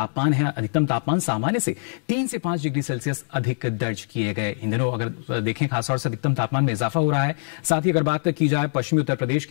है, अधिकतम तापमान सामान्य से 3 से 5 डिग्री सेल्सियस अधिक दर्ज किए गए। इन दिनों अगर देखें खासतौर से अधिकतम तापमान में इजाफा हो रहा है। साथ ही अगर बात की जाए पश्चिमी उत्तर प्रदेश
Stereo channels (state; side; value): silent; right; digital silence